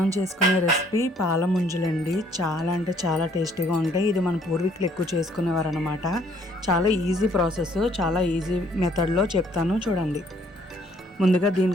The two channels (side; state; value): both; normal; correlation 0.63